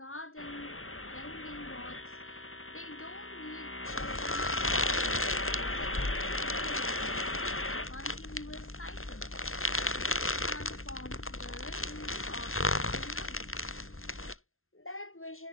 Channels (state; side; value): late; right; 0.62 ms